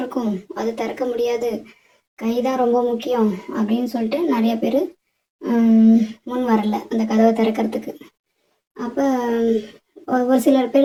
அது திறக்க முடியாது, கை தான் ரொம்ப முக்கியம் அப்படின்னு சொல்லிட்டு நிறைய பேர் முன் வரல அந்த கதவை திறக்கிறதுக்கு. அப்போ ஒரு சிலர்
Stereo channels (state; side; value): identical; both; correlation 1.00